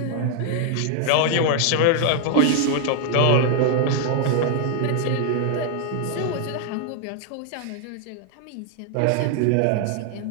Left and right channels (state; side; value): different; both; correlation 0.00